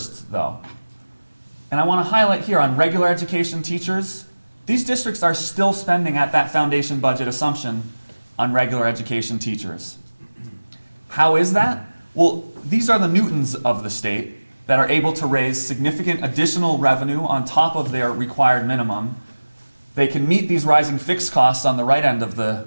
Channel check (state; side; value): inverted; both; correlation -1.00